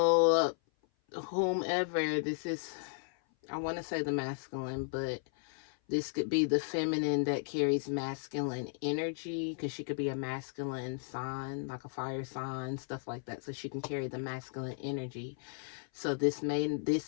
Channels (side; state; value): right; silent; 55 dB below the other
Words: whomever this is, I want to say the masculine, but this could be the feminine that carries masculine energy, because she could be a masculine sign, like a fire sign, stuff like that. So she can carry the masculine energy. So this